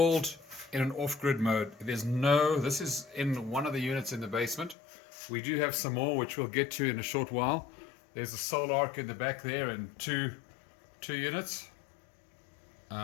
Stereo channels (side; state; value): right; drops out; at 4.8 s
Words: in an off-grid mode. This is in one of the units in the basement. We do have some more, which we'll get to in a short while. There's a solar arc in the back there and two units.